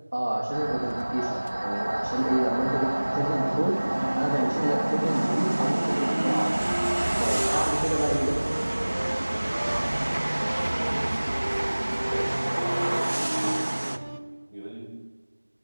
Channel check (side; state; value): both; inverted; correlation -1.00